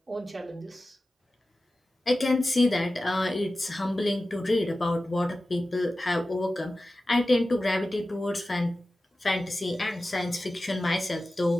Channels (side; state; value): both; normal; correlation 0.95